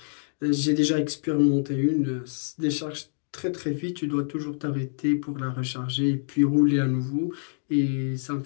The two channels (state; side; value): silent; right; digital silence